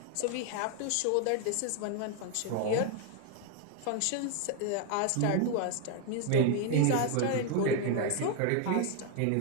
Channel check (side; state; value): both; different; correlation 0.01